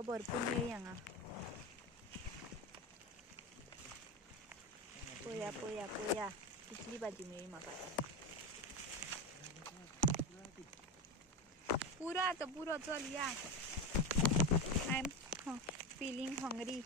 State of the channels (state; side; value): normal; both; correlation 0.19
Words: भरपूर मेळ्ळी हांगा. पळया पळया पळया कितली भाजी मेळ्ळी म्हाका. पुरो आतां पुरो, चल या. I am feeling hungry.